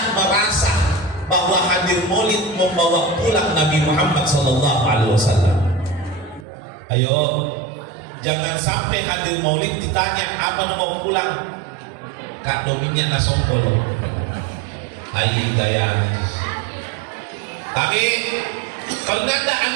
merasa bahwa hadir maulid membawa pulang Nabi Muhammad SAW? Ayo, jangan sampai hadir maulid ditanya apa mau pulang. Kak dominya nggak sompol. Ayo gaya. Tapi pernahkah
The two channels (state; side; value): drops out; left; at 6.5 s